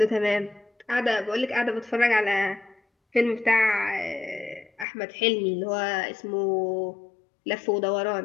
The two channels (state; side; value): drops out; right; at 4.9 s